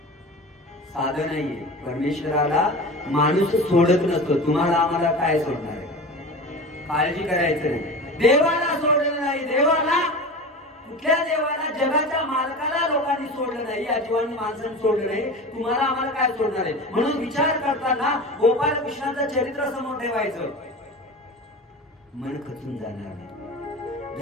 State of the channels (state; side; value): normal; both; correlation 0.32